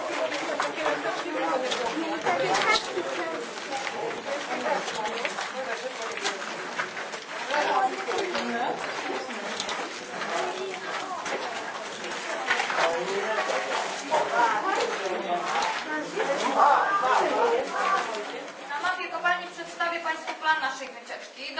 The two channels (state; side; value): identical; both; correlation 1.00